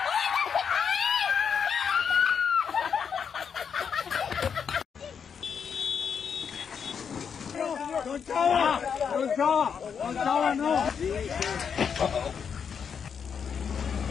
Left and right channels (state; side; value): quieter; right; 6.9 dB